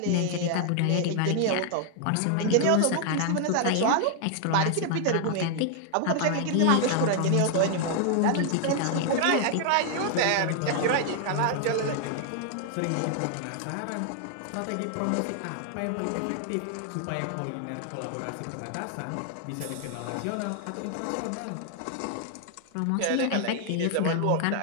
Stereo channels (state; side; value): different; both; correlation 0.00